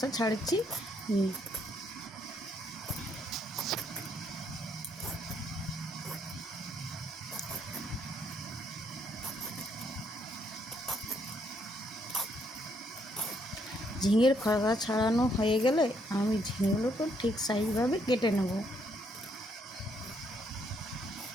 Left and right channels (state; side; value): normal; both; correlation 0.72